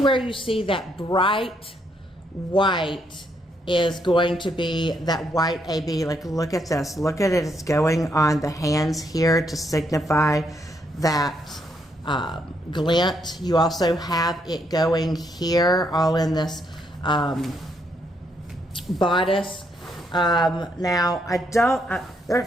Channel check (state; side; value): normal; both; correlation 0.75